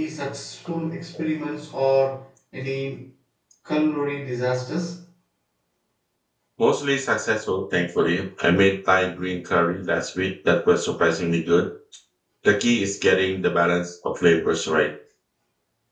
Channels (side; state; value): both; identical; correlation 1.00